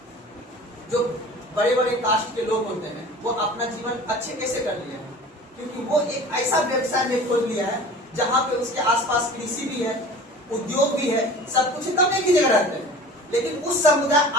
जो बड़े बड़े कास्ट के लोग होते हैं वो अपना जीवन अच्छे कैसे कर लिए हैं? क्योंकि वो एक ऐसा व्यवसाय में खोल लिया है जहाँ पे उसके आसपास कृषि भी है, उद्योग भी है, सब कुछ तब एक ही जगह रहते हैं। लेकिन उस समुदाय,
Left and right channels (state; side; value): normal; both; correlation 0.41